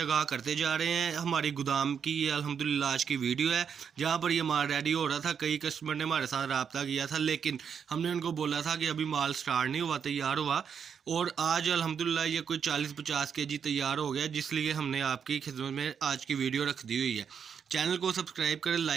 आगाह करते जा रहे हैं। हमारी गोदाम की ये अल्हम्दुलिल्लाह आज की वीडियो है, जहाँ पर ये माल रेडी हो रहा था। कई कस्टमर ने हमारे साथ रब्ता किया था, लेकिन हमने उनको बोला था कि अभी माल स्टार्ट नहीं हुआ, तैयार हुआ। और आज अल्हम्दुलिल्लाह ये कोई 40-50 केजी तैयार हो गया, जिसलिए हमने आपकी खिदमत में आज की वीडियो रख दी हुई है। चैनल को सब्सक्राइब करें,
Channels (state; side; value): quieter; left; 7.2 dB